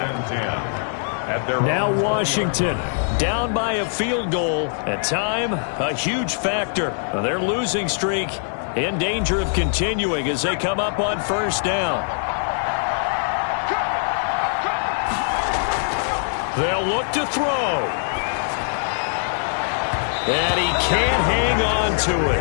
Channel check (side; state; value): right; silent; digital silence